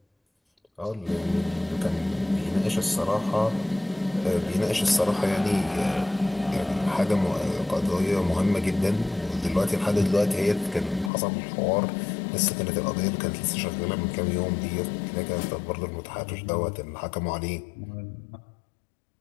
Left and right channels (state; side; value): drops out; right; at 11.1 s